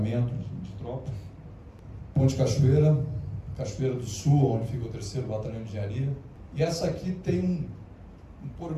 de tropa. Ponte Cachoeira, Cachoeira do Sul, onde fica o 3º Batalhão de Engenharia. E essa aqui tem um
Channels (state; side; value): identical; both; correlation 1.00